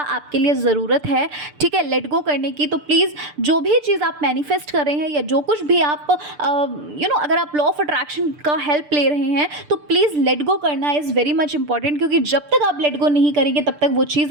लिए ज़रूरत है, ठीक है, लेट गो करने की। तो प्लीज़ जो भी चीज़ आप मैनिफेस्ट कर रहे हैं या जो कुछ भी आप अगर आप लॉ ऑफ अट्रैक्शन का हेल्प ले रहे हैं तो प्लीज़ लेट गो करना इज़ वेरी मच इंपॉर्टेंट, क्योंकि जब तक आप लेट गो नहीं करेंगे तब तक वो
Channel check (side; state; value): left; late; 6.8 ms